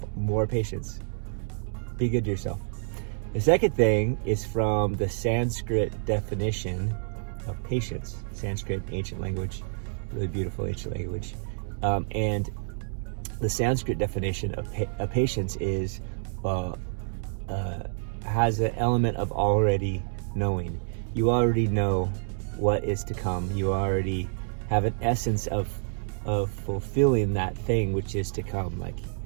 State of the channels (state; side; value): silent; left; digital silence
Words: more patience. Be good to yourself. The second thing is from the Sanskrit definition of patience. Sanskrit, ancient language, really beautiful ancient language. And the Sanskrit definition of patience is has an element of already knowing. You already know what is to come. You already have an essence of fulfilling that thing which is to come.